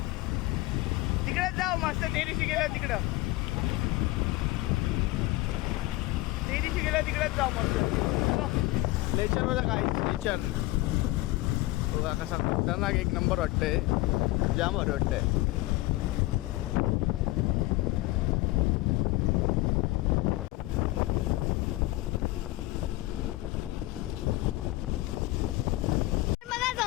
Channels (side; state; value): right; quieter; 19.2 dB